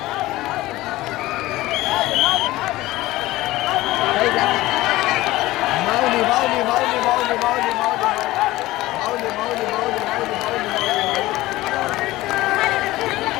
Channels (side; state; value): right; quieter; 17.8 dB